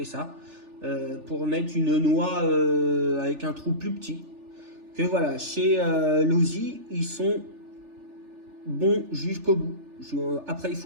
ça, pour mettre une noix avec un trou plus petit. Que voilà, chez Losi, ils sont bons jusqu'au bout. Après, il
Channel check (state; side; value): late; left; 3.4 ms